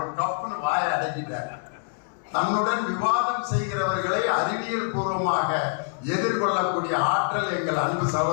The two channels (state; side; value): silent; right; digital silence